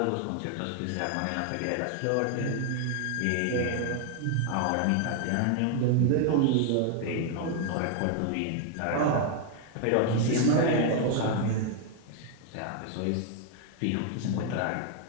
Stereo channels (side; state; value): both; different; correlation 0.00